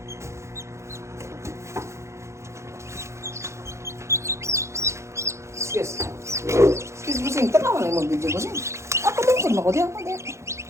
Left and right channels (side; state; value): left; late; 0.14 ms